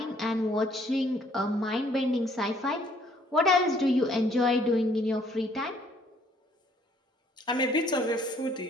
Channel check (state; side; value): normal; both; correlation 0.63